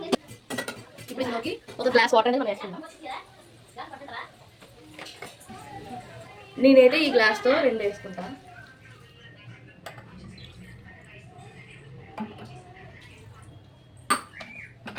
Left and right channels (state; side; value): identical; both; correlation 1.00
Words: ఇప్పుడు ఇందులోకి ఒక గ్లాస్ వాటర్ అనేది మనం వేసుకుందాం. నేనైతే ఈ గ్లాస్తో 2 వేసుకుంటాను.